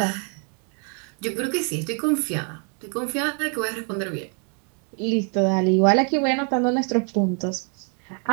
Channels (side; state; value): left; quieter; 38.9 dB